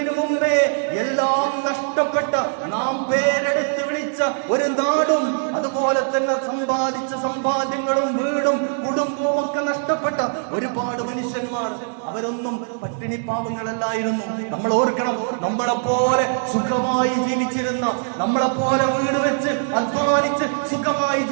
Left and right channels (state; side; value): silent; left; 64 dB below the other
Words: മുമ്പേ എല്ലാം നഷ്ടപ്പെട്ട, നാം പേരെടുത്ത് വിളിച്ച ഒരു നാടും അതുപോലെ തന്നെ സമ്പാദിച്ച സമ്പാദ്യങ്ങളും വീടും കുടുംബവും ഒക്കെ നഷ്ടപ്പെട്ട ഒരുപാട് മനുഷ്യന്മാർ, അവരൊന്നും പട്ടിണി പാവങ്ങളല്ലായിരുന്നു. നമ്മൾ ഓർക്കണം, നമ്മളെപ്പോലെ സുഖമായി ജീവിച്ചിരുന്ന, നമ്മളെപ്പോലെ വീട് വെച്ച് അധ്വാനിച്ച് സുഖമായി